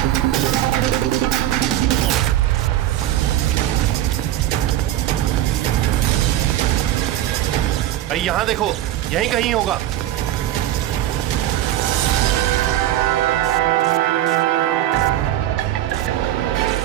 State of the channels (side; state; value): left; quieter; 13.0 dB